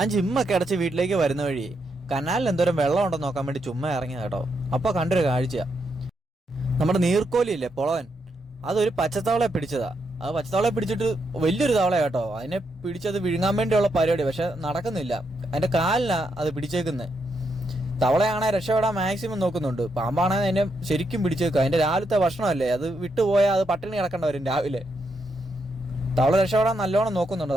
ജിമ്മൊക്കെ അടച്ച് വീട്ടിലേക്ക് വരുന്ന വഴി കനാലിൽ എന്തോരം വെള്ളം ഉണ്ടെന്ന് നോക്കാൻ വേണ്ടി ചുമ്മാ ഇറങ്ങിയ കേട്ടോ. അപ്പൊ കണ്ടൊരു കാഴ്ച, നമ്മുടെ നീർക്കോലിയില്ലേ പൊളവൻ, അതൊരു പച്ചത്തവളയെ പിടിച്ചതാ. അത് പച്ചത്തവളയെ പിടിച്ചിട്ട് വലിയൊരു തവള കേട്ടോ. അതിനെ പിടിച്ചത് വിഴുങ്ങാൻ വേണ്ടിയുള്ള പരിപാടി, പക്ഷെ നടക്കുന്നില്ല. അതിന്റെ കാലിനാ അത് പിടിച്ചേക്കുന്നത്. തവളയാണെ രക്ഷപ്പെടാൻ മാക്സിമം നോക്കുന്നുണ്ട്, പാമ്പാണെങ്കിൽ അതിനെ ശരിക്കും പിടിച്ചേക്കുക. അതിന്റെ രാവിലത്തെ ഭക്ഷണമല്ലേ, അത് വിട്ടുപോയാൽ അത് പട്ടിണി കിടക്കേണ്ട വരും രാവിലെ. തവള രക്ഷപ്പെടാൻ നല്ലോണം നോക്കുന്നുണ്ട്.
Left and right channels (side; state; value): both; normal; correlation 0.80